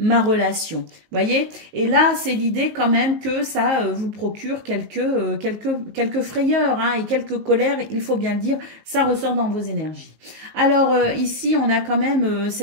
relation. Voyez? Et là, c'est l'idée quand même que ça vous procure quelques frayeurs hein, et quelques colères, il faut bien le dire, ça ressort dans vos énergies. Alors ici, on a quand même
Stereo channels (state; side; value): late; left; 19 ms